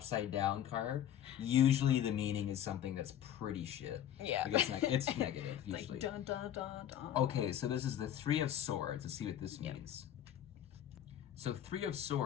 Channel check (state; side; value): quieter; right; 10.7 dB